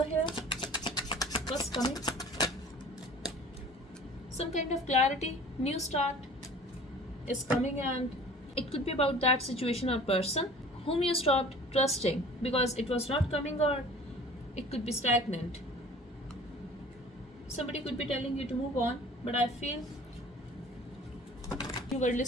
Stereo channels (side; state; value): both; normal; correlation 0.45